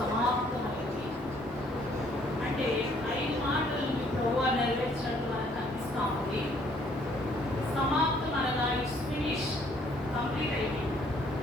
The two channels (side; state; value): left; noise; rumble, 22 dB below the sound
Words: అంటే 5 మాటలను ప్రభువా నెరవేర్చినట్టు మనకు అనిపిస్తూ ఉంది. సమాప్తం అనగా ఇట్స్ ఫినిష్, కంప్లీట్ అయిపోయింది.